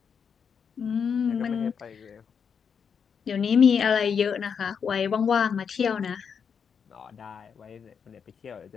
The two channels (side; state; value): right; quieter; 6.7 dB